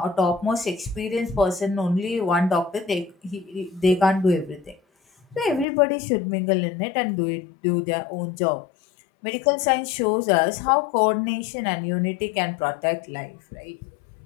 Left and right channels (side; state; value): right; drops out; at 5.7 s